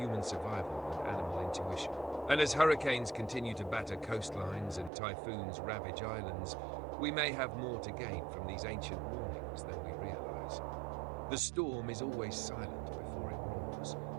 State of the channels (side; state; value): left; drops out; at 4.9 s